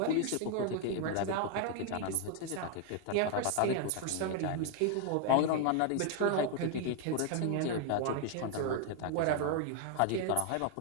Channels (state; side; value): different; both; correlation 0.00